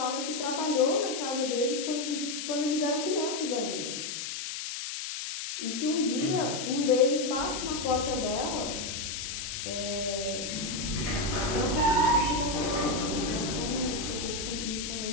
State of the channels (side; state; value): left; noise; hiss, 5 dB below the sound